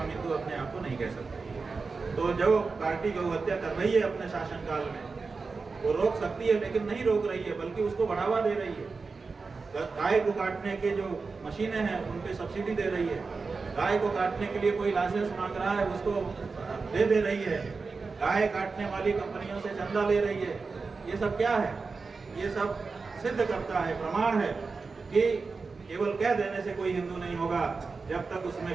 हिंदू अपने आप को नहीं कह सकते। तो जो पार्टी गौ हत्या कर रही है अपने शासनकाल में, वो रोक सकती है, लेकिन नहीं रोक रही है, बल्कि उसको बढ़ावा दे रही है। गाय को काटने के जो मशीनें हैं उन पे सब्सिडी दे रही है, गाय को काटने के लिए कोई लाइसेंस मांग रहा है उसको दे रही है, गाय काटने वाली कंपनियों से चंदा ले रही है। ये सब क्या है? ये सब सिद्ध करता है, प्रमाण है कि केवल कह देने से कोई हिंदू नहीं होगा। जब तक उसमें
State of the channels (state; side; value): quieter; left; 4.4 dB